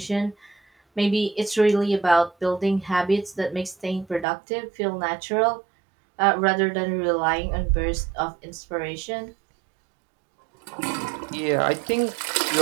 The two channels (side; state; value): left; drops out; at 4.2 s